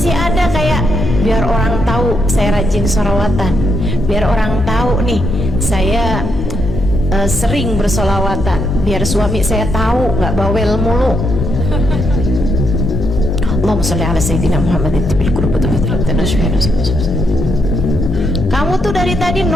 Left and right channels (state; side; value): normal; both; correlation 0.79